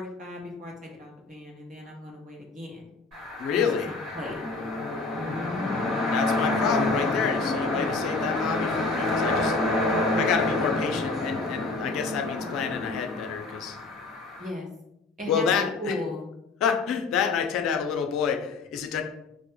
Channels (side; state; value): right; quieter; 3.8 dB